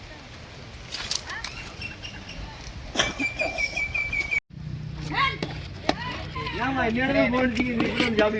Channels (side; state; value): both; identical; correlation 1.00